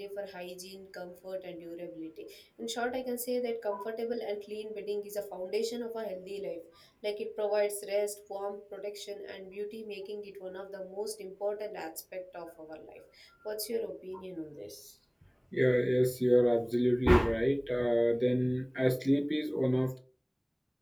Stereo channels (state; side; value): identical; both; correlation 1.00